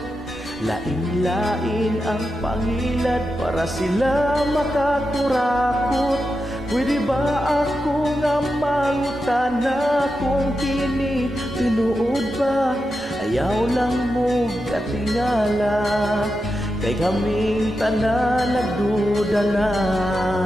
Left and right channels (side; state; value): both; normal; correlation 0.89